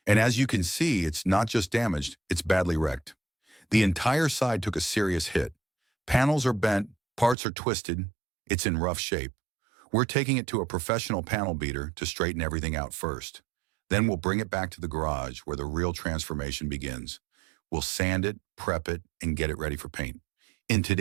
And as you can see, it's not just damaged, it's badly wrecked. The entire side took a serious hit. Panels are bent, parts are twisted, it's in rough shape. We're taking it to a professional panel beater to straighten everything out first. Then we'll bring it back to the garage where the real transformation begins. We'll sand it, prep it, and get it ready for paint. In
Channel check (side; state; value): left; drops out; at 7.4 s